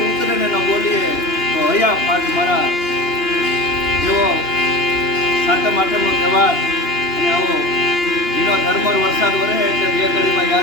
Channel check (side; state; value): right; late; 2.8 ms